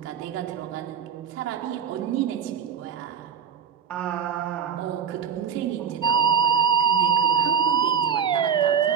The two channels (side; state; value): left; quieter; 7.7 dB